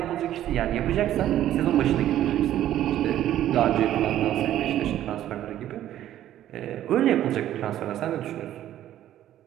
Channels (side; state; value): left; quieter; 12.3 dB